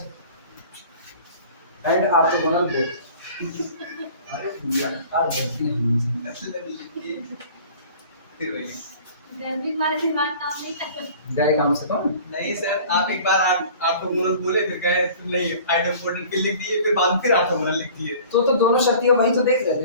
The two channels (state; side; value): inverted; both; correlation -0.46